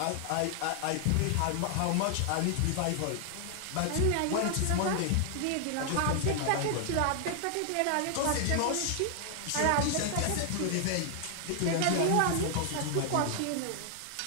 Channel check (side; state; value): both; different; correlation 0.00